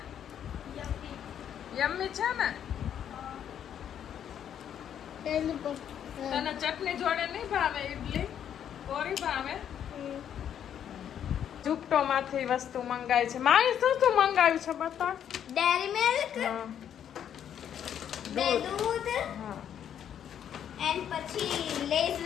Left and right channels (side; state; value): right; quieter; 9.4 dB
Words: યમ્મી છે ને? તને ચટણી જોડે નહીં ભાવે ઇડલી? કોરી ભાવે? ઝુપટો માંથી વસ્તુ મંગાવી છે. મારી શું મંગાવ્યું છે બતા? ડેરી મિલ્ક, દૂધ, એન્ડ પછી લેઝ